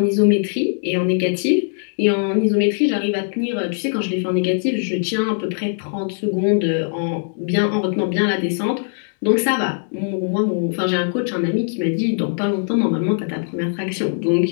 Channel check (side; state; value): right; silent; digital silence